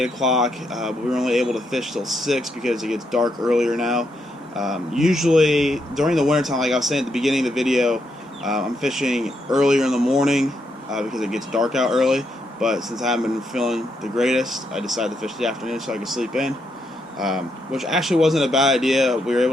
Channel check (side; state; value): both; normal; correlation 0.79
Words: o'clock, but we were only able to fish till 6 because it gets dark earlier now. Usually during the wintertime, like I was saying at the beginning of the video, I'm fishing earlier in the morning because it gets dark out early. But since I haven't been feeling the greatest, I decided to fish the afternoon so I could sleep in. Which actually wasn't a bad idea. We were